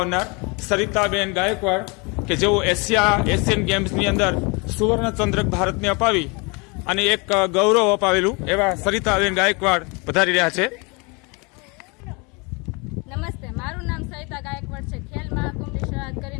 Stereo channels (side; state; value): right; quieter; 29.8 dB